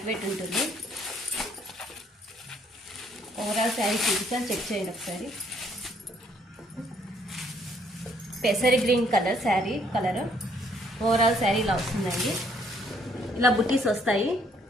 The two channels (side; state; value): both; normal; correlation 0.66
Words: వెయిట్ ఉంటుంది. ఓవరాల్ శారీ చూపిస్తాను, చెక్ చేయండి ఒకసారి. పెసరి green colour sari colour. Overall sari ఇలా వస్తుందండి. ఇలా బుటీస్ వస్తాయి.